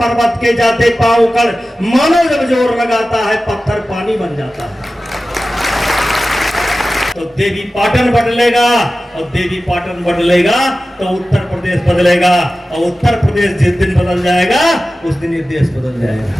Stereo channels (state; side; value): normal; both; correlation 0.95